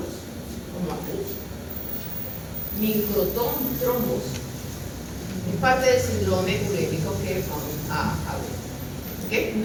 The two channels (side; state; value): both; identical; correlation 1.00